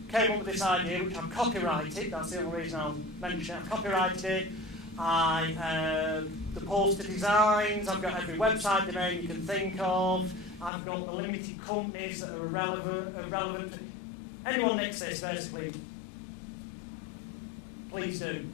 came up with this idea, which I've copyrighted. That's the only reason I'll mention it. I've copyrighted it. The poster designs, I've got every website domain you can think of. I've got the limited companies that are irrelevant. Anyone nicks this, basically, please do,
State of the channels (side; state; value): right; drops out; at 10.7 s